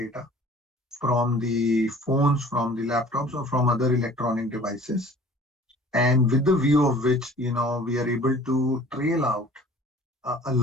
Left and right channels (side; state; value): both; normal; correlation 0.49